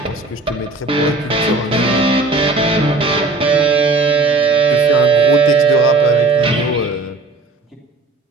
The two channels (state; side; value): quieter; left; 3.5 dB